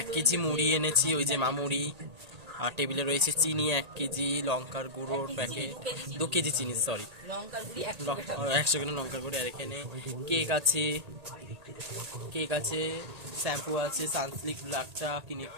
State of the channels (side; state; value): left; late; 1.8 ms